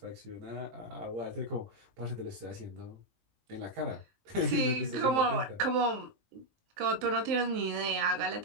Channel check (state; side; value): late; left; 19 ms